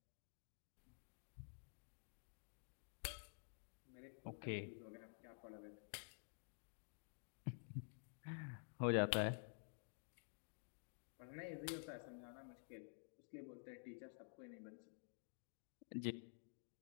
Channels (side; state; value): right; silent; digital silence